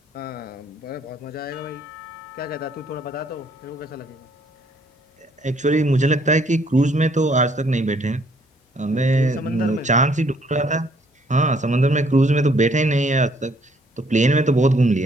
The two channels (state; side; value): normal; both; correlation 0.65